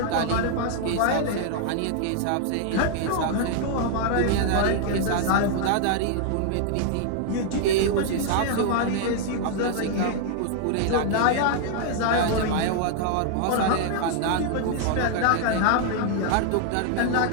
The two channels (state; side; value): different; both; correlation -0.01